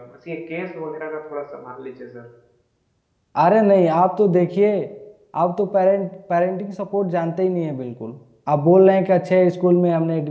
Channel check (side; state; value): both; identical; correlation 1.00